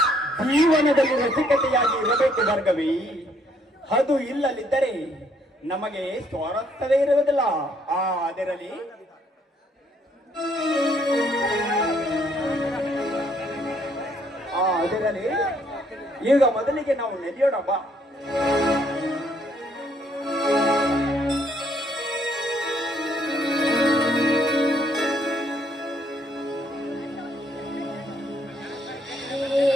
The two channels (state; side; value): normal; both; correlation 0.67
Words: ಜೀವನದಲ್ಲಿ ರಸಿಕತೆಯಾಗಿ ಇರಬೇಕು ಭಾರ್ಗವಿ. ಅದು ಇಲ್ಲದಿದ್ದರೆ ನಮಗೆ ಸ್ವಾರಸ್ಯವೇ ಇರುವುದಿಲ್ಲ. ಅದರಲ್ಲಿ ಈಗ ಮೊದಲಿಗೆ ನಾವು ನಡೆಯೋಣ ಬಾ.